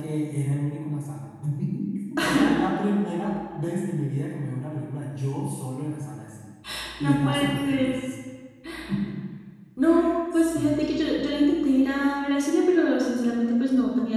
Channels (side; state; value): both; identical; correlation 1.00